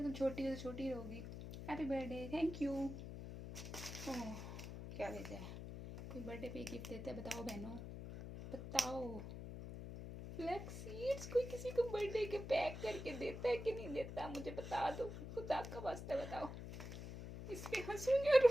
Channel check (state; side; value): noise; left; hum, 8 dB below the sound